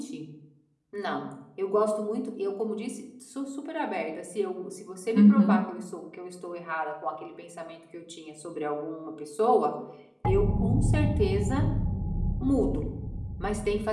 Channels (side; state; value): both; identical; correlation 1.00